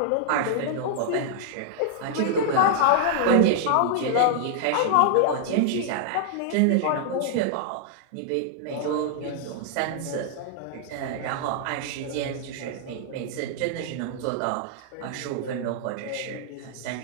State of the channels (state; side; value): different; both; correlation -0.01